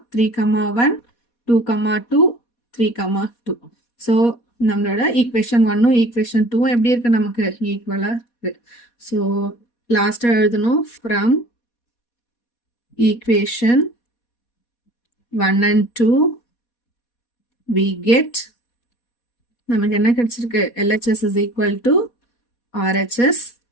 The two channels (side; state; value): right; late; 4.2 ms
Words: 3,1 2,2 3,2. ஸோ நம்மளோட ஈக்குவேஷன் 1ம் ஈக்குவேஷன் 2ம் எப்படி இருக்குது, நமக்கு ஈக்குவலாக இருக்குது. ஸோ லாஸ்ட்டாக எழுதணும், from equation 1 and 2 we get, நமக்கு என்ன கிடைச்சிருக்கு, LHS is equal to RHS.